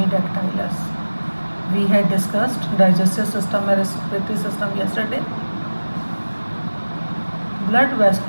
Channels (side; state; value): both; inverted; correlation -1.00